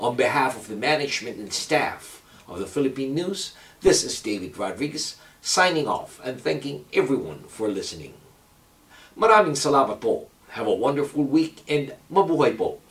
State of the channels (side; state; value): both; identical; correlation 1.00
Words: behalf of the management and staff of the Philippine News, this is David Rodriguez signing off and thanking everyone for listening. Maraming salamat po. Have a wonderful week and mabuhay po